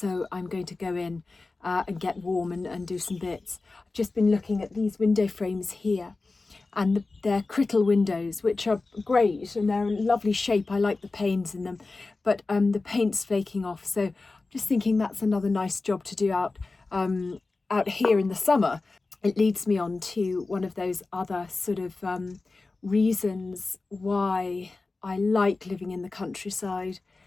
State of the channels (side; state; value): right; quieter; 3.6 dB